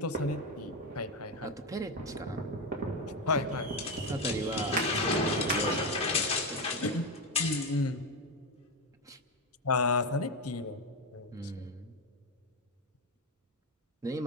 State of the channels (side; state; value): both; normal; correlation 0.11